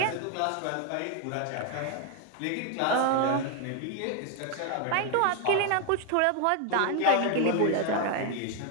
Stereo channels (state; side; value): different; both; correlation 0.01